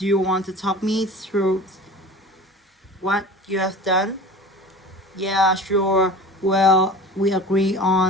you want to talk me through what you have done? Yeah, sure. Well, we agree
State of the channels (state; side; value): normal; both; correlation 0.38